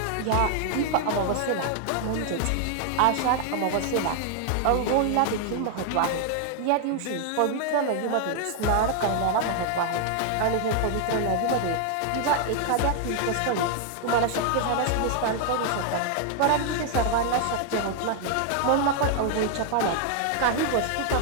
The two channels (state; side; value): different; both; correlation 0.00